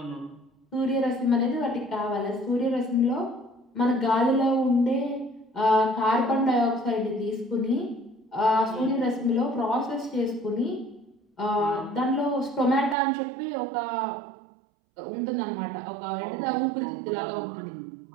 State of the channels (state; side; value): drops out; left; at 13.0 s